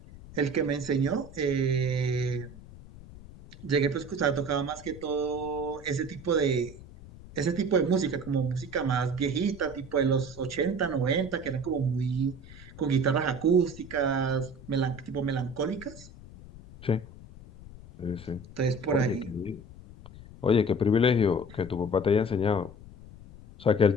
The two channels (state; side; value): noise; left; rumble, 17 dB below the sound